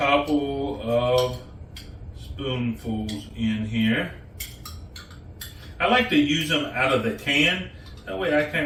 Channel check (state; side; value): identical; both; correlation 1.00